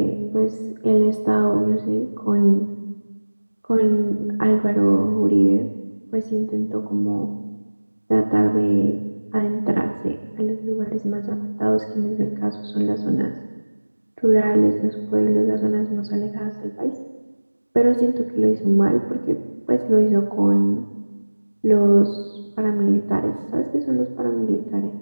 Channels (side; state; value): both; inverted; correlation -1.00